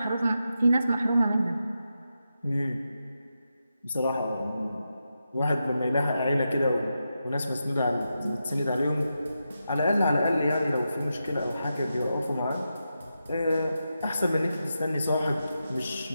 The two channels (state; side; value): inverted; both; correlation -0.88